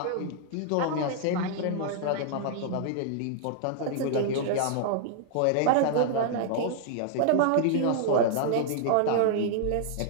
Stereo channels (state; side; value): different; both; correlation -0.01